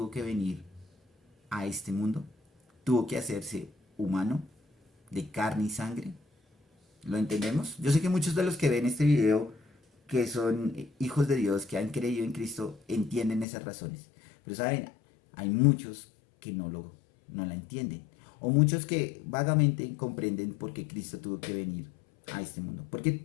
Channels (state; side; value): drops out; right; at 13.5 s